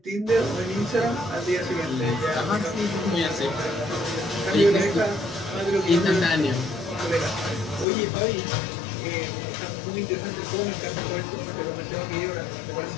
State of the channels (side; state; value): right; drops out; at 7.9 s